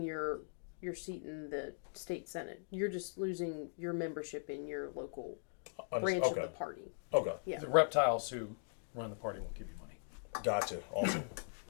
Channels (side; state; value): right; silent; digital silence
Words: your seat in the state senate. You're just losing your membership in your local branch of the party. Okay. Yeah. The reptiles who run the party won't give you money. Gotcha. Awesome.